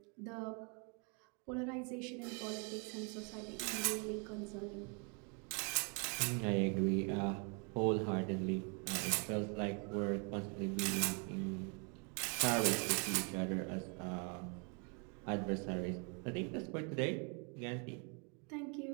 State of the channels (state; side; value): quieter; left; 36.3 dB